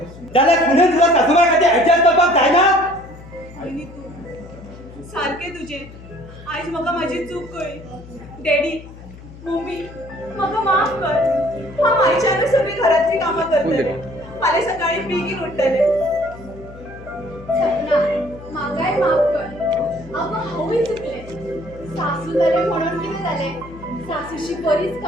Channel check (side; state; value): left; noise; hum, 17 dB below the sound